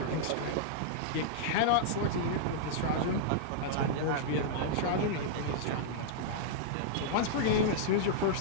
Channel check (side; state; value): both; different; correlation -0.02